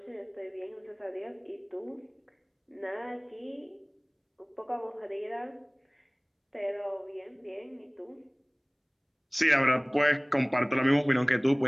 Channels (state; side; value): identical; both; correlation 1.00